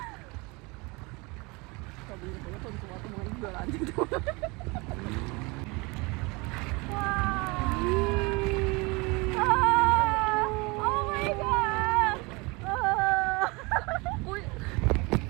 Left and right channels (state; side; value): quieter; left; 26.7 dB